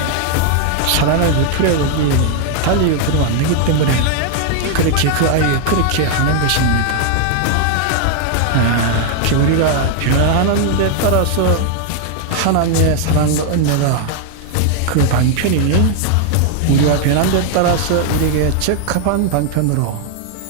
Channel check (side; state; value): both; different; correlation 0.00